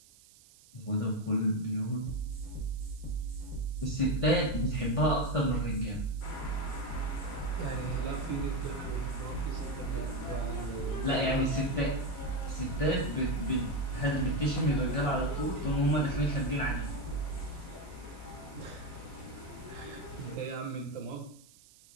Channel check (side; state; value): right; noise; hiss, 25 dB below the sound